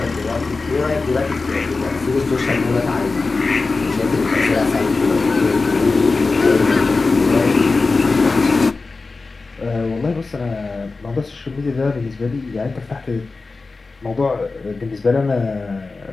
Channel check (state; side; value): quieter; right; 3.9 dB